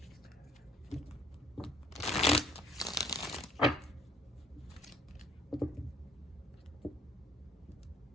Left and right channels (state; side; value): normal; both; correlation 0.60